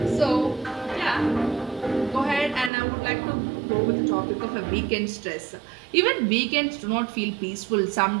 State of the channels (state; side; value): drops out; left; at 2.7 s